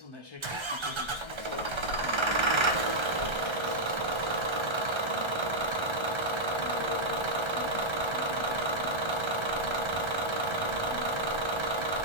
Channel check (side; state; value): left; late; 1.3 ms